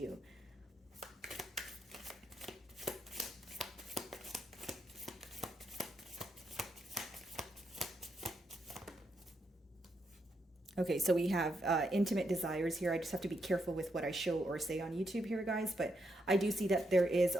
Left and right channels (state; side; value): normal; both; correlation 0.80